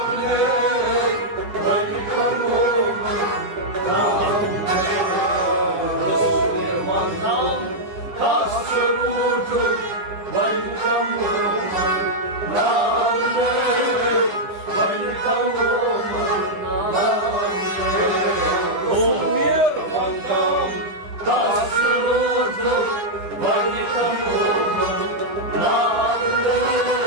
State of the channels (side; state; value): left; late; 9.8 ms